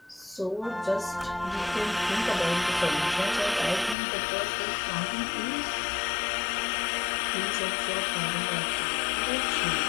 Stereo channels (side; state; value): right; drops out; at 4.0 s